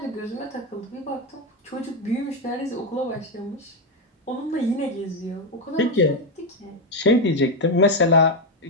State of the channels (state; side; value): normal; both; correlation 0.05